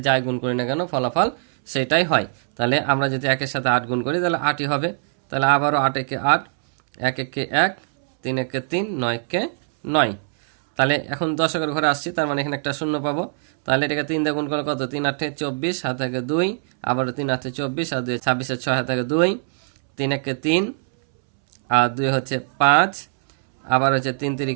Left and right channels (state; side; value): silent; left; 64 dB below the other